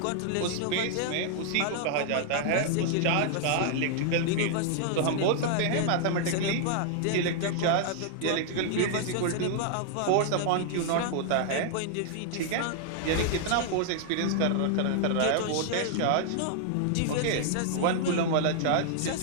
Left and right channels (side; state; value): both; different; correlation -0.01